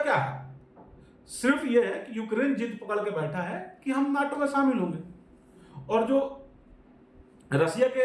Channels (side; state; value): both; identical; correlation 1.00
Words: है? सिर्फ ये है कि यूक्रेन जिद पकड़ के बैठा है कि हम नाटो में शामिल होंगे, और जो रसिया